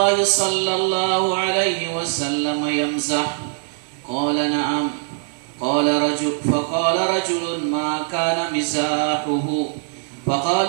صلى الله عليه وسلم يمزح؟ قال: نعم. فقال رجل: ما كان مزاحه؟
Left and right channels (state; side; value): silent; left; 65 dB below the other